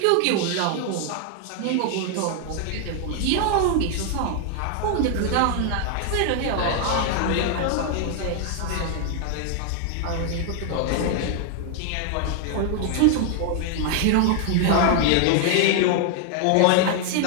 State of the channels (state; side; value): different; both; correlation 0.00